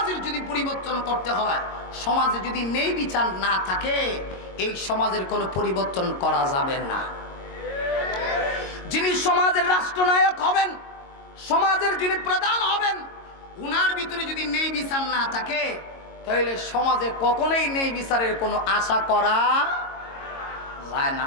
যদি পরিবর্তন করতে হয়, সমাজে যদি ন্যায় বিচার না থাকে, এই সমাজের কোনো পরিবর্তন করা যাবে না। যিনি সমাজের রাষ্ট্রনায়ক হবেন, সমাজের যিনি প্রধান হবেন, উনার ভিতরে যদি ন্যায় বিচার না থাকে, তাহলে সমাজে কখনোই ন্যায় বিচারের কোনো আশা করা যায় না।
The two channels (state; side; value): late; right; 22 ms